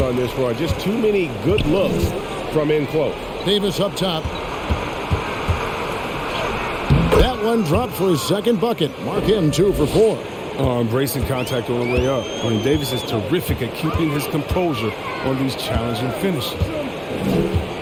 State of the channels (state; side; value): identical; both; correlation 1.00